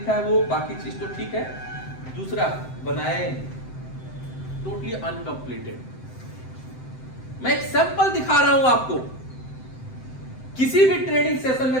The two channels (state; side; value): late; right; 7.8 ms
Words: है, वो बाकी चीज तो ठीक है। दूसरा बनाया ही नहीं, टोटली अनकंप्लीटेड। मैं एक सैंपल दिखा रहा हूं आपको। किसी भी ट्रेनिंग सेशन